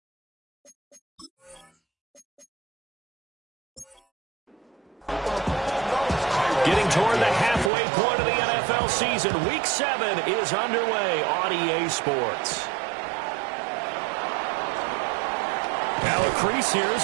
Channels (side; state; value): left; drops out; at 7.7 s